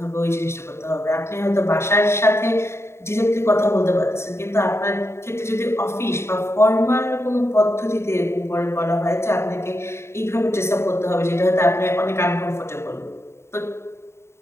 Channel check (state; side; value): late; right; 0.13 ms